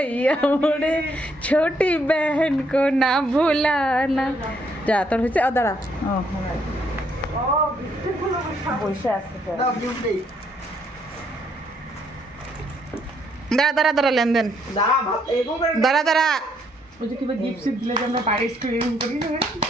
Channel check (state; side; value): normal; both; correlation 0.71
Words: मोड़े छोटी बहन को ना भुलाना। যা তোর হয়েছে। ও দাঁড়া, ও বসে আছে। দাও গিফট দেই। দাঁড়া দাঁড়া দাঁড়া, লেনদেন। দাঁড়া ভাত এরকম করে দাঁড়া দাঁড়া। ওই যে কিবা গিফট সিফট দিলে যে আমরা বাড়ি এক্সপেরিমেন্ট করি না।